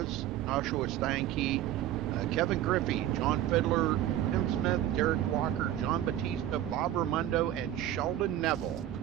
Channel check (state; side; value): quieter; left; 12.4 dB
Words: Joshua Steinke, Kevin Griffey, John Fiddler, Tim Smith, Derek Walker, John Batista, Bob Raimondo, and Sheldon Neville.